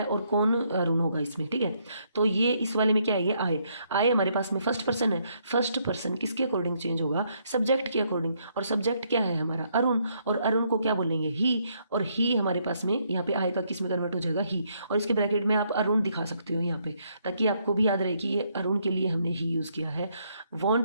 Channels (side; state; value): both; inverted; correlation -0.72